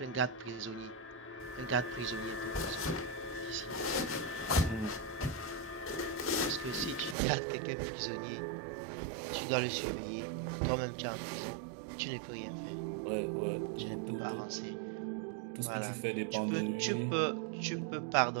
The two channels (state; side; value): drops out; left; at 7.2 s